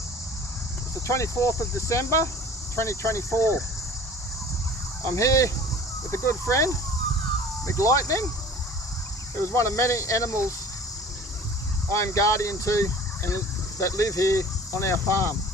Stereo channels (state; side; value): normal; both; correlation 0.45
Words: the 24th of December 2024. I'm here with a good friend, McLightning, who is one of many animals I am guardian to and that live here on our farm.